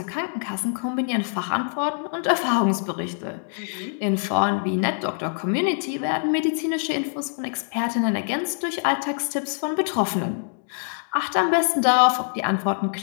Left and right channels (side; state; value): right; silent; digital silence